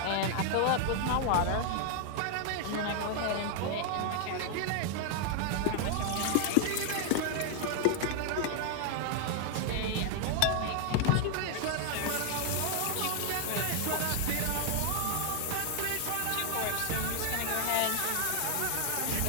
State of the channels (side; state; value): both; different; correlation 0.00